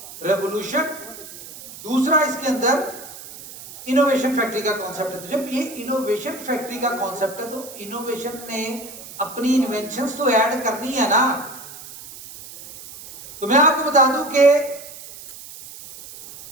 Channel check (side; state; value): right; noise; hiss, 15 dB below the sound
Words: रेवोल्यूशन, दूसरा इसके अंदर इनोवेशन फैक्ट्री का कॉन्सेप्ट है। तो जब ये इनोवेशन फैक्ट्री का कॉन्सेप्ट है तो इनोवेशन ने अपनी इन्वेंशंस तो ऐड करनी है ना। तो मैं आपको बता दूं कि